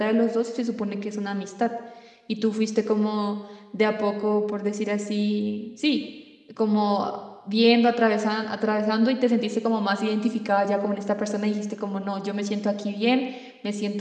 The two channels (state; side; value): identical; both; correlation 1.00